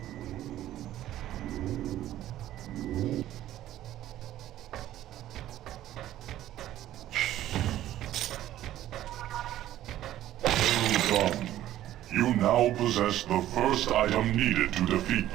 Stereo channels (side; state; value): left; quieter; 13.3 dB